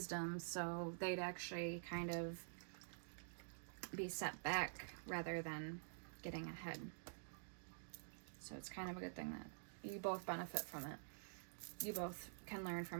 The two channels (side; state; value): left; silent; digital silence